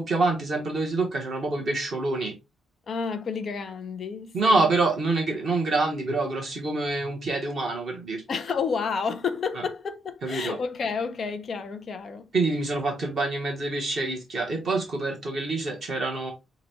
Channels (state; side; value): normal; both; correlation 0.76